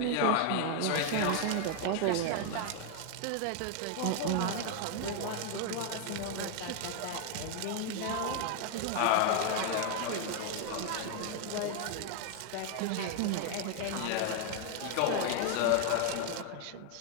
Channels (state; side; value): different; both; correlation 0.00